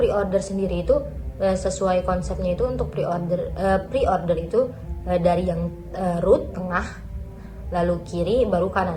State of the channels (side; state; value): both; identical; correlation 1.00